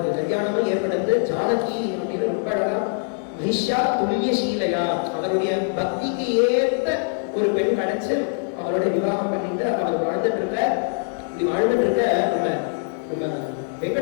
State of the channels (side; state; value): right; silent; digital silence